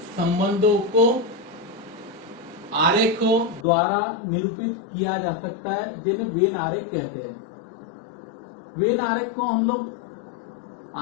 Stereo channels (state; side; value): drops out; right; at 3.7 s